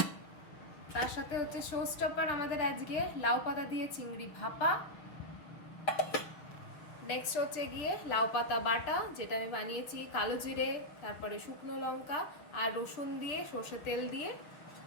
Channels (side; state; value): right; late; 6.7 ms